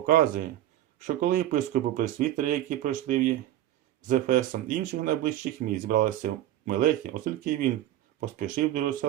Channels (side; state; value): left; quieter; 13.4 dB